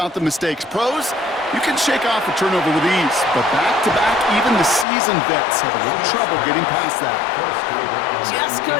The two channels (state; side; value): drops out; right; at 4.9 s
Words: the mistakes. Pros, you can shake off a turnover with ease, but back-to-back, even the seasoned vets have a little trouble getting past that. Just